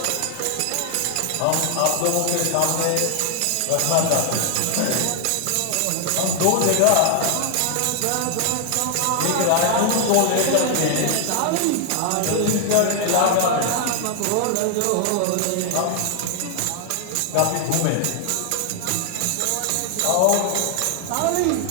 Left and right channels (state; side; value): different; both; correlation 0.00